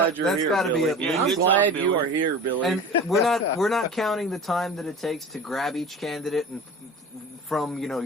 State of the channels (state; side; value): normal; both; correlation 0.36